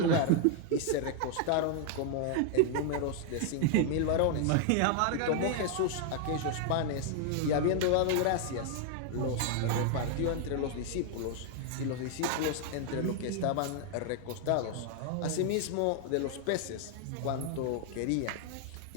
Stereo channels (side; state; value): both; different; correlation 0.00